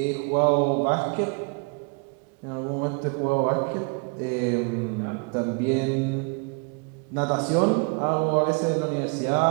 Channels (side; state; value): left; quieter; 32.4 dB